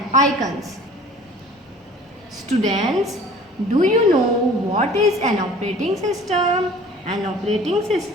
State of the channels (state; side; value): normal; both; correlation 0.47